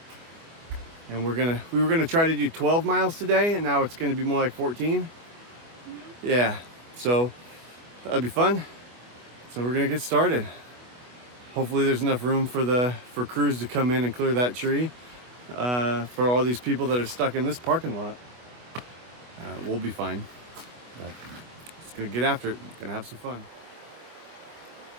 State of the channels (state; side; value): late; left; 25 ms